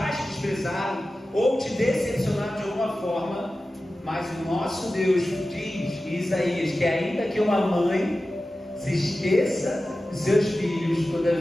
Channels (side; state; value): both; normal; correlation 0.95